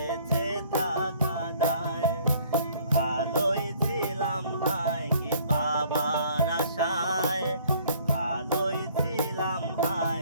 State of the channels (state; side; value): inverted; both; correlation -0.58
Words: থাকা দায়। ভালোই ছিলাম হায় কি পাবার আশায়, ভালোই ছিলাম